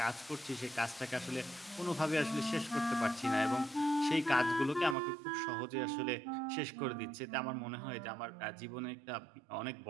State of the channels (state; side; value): drops out; left; at 5.0 s